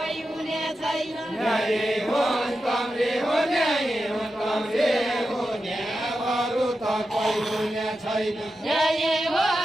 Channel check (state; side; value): normal; both; correlation 0.90